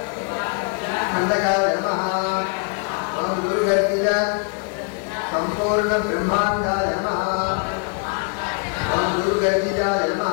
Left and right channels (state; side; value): quieter; right; 37.9 dB